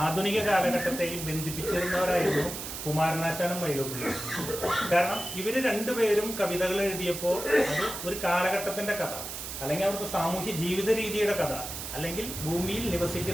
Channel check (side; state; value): right; noise; hiss, 7 dB below the sound